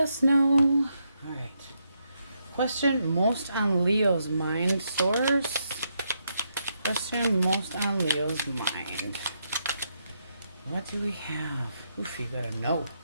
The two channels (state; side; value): inverted; both; correlation -0.80